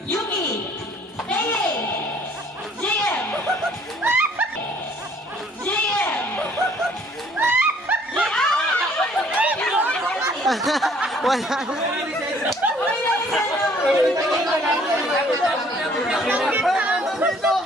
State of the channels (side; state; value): both; normal; correlation 0.59